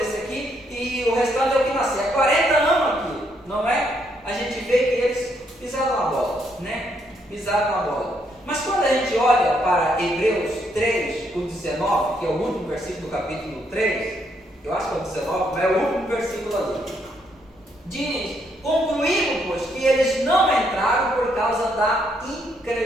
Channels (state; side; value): normal; both; correlation 0.74